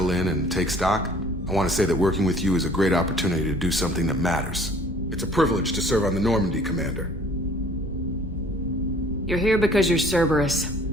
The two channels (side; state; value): both; normal; correlation 0.53